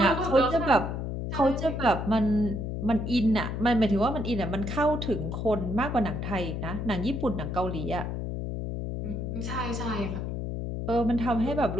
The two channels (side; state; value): left; noise; hum, 4 dB below the sound